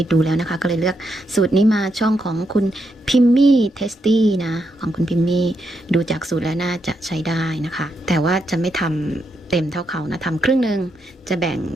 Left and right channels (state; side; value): normal; both; correlation 0.81